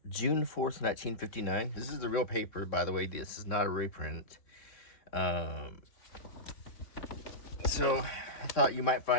June 4th, 1959. This is the real paper, by the way. This is not a reprint. So I thought you might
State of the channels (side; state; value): right; late; 3.6 ms